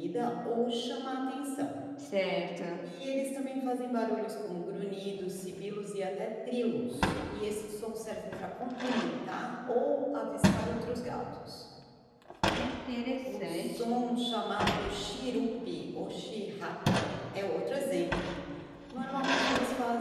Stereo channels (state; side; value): identical; both; correlation 1.00